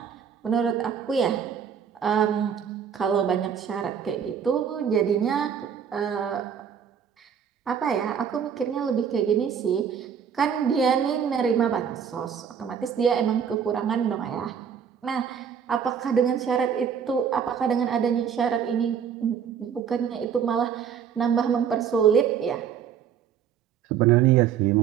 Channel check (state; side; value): quieter; left; 7.8 dB